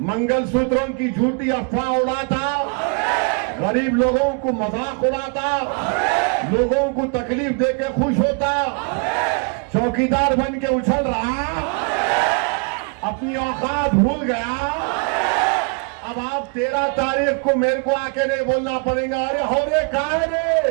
मंगलसूत्रों की झूठी अफवाह उड़ाता, गरीब लोगों को मजाक उड़ाता, लोगों को तकलीफ देके खुश होता, चौकीदार बन के उछल रहा, अपनी औकात भूल गया। अब आप 13 तारीख को मेरे को आके नहीं बोलना पड़ेगा, अरे हो रे कहा है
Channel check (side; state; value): left; quieter; 36.3 dB